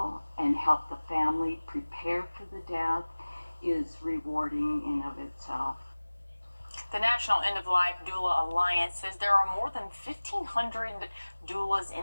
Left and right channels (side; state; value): both; inverted; correlation -1.00